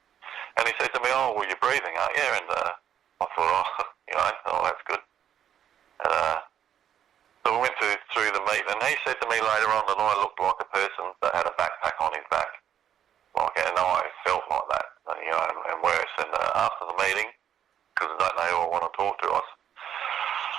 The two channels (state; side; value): quieter; left; 9.5 dB